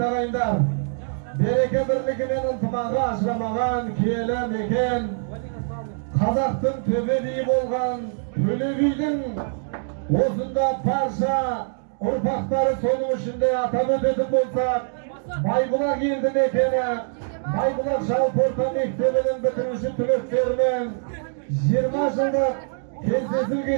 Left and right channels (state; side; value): silent; left; digital silence